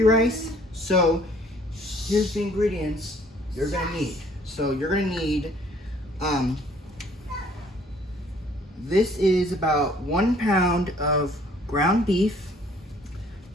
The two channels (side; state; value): both; normal; correlation 0.58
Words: rice. So, here's the ingredients you're gonna need. So you're gonna need, this is about 1 pound of ground beef.